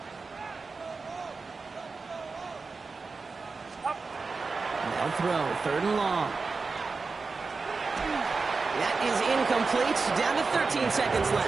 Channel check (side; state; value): left; quieter; 4.3 dB